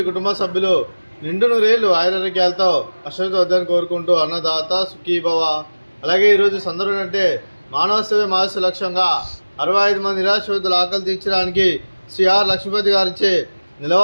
కుటుంబ సభ్యులు నిండు నూరేళ్లు ఆయురారోగ్యాలతో అశ్వత వద్దని కోరుకుంటూ అన్నదాత సుఖీభవ. అలాగే ఈరోజు సందర్భం అంటే మానవ సేవ మానవ లక్ష్యంగా 65 మంది నిరాశ్రతుల ఆకలి తీర్చడానికి శ్రీ ఆర్ లక్ష్మీపతి గారిచే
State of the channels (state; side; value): inverted; both; correlation -1.00